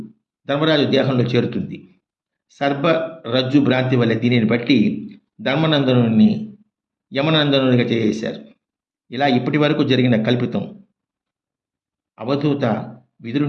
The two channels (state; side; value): identical; both; correlation 1.00